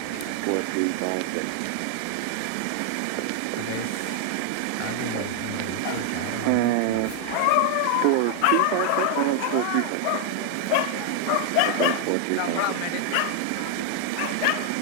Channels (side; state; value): both; different; correlation 0.00